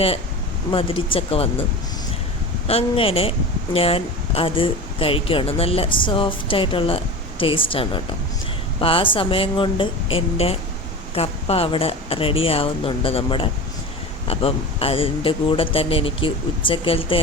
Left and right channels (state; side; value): normal; both; correlation 0.30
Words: മധുരിച്ചൊക്കെ വന്നു. അങ്ങനെ ഞാൻ അത് കഴിക്കുകയാണ്. നല്ല സോഫ്റ്റായിട്ടുള്ള ടേസ്റ്റാണ് കേട്ടോ. അപ്പോൾ ആ സമയം കൊണ്ട് എൻ്റെ കപ്പ അവിടെ റെഡി ആവുന്നുണ്ട് നമ്മുടെ. അപ്പം അതിൻ്റെ കൂടെ തന്നെ എനിക്ക് ഉച്ചക്കലത്തെ